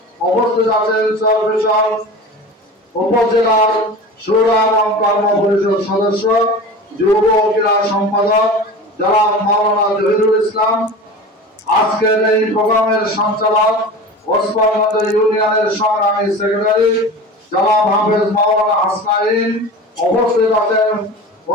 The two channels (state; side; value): normal; both; correlation 0.34